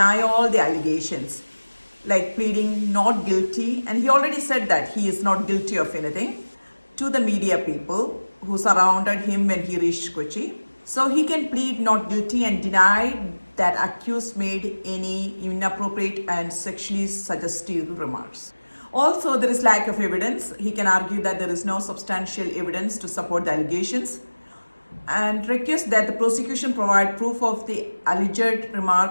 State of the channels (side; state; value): both; inverted; correlation -1.00